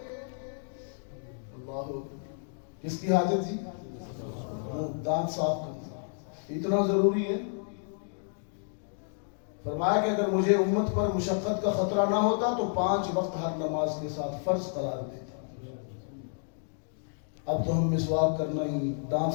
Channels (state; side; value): silent; right; digital silence